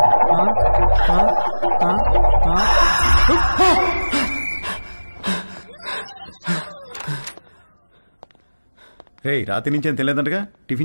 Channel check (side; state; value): both; inverted; correlation -1.00